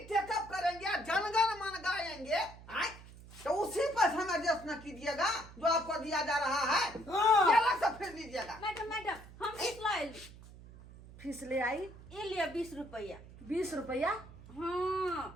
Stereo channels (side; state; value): right; noise; hum, 18 dB below the sound